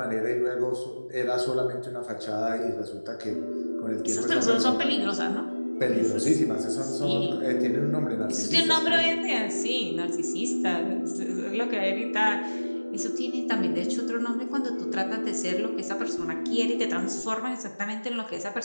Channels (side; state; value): both; inverted; correlation -1.00